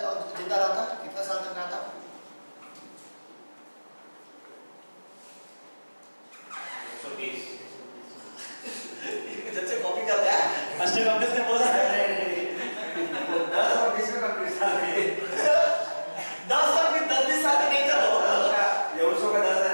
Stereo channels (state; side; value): inverted; both; correlation -1.00